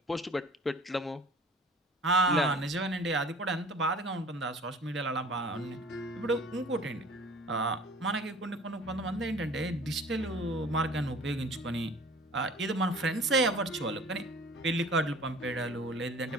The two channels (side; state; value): both; normal; correlation 0.46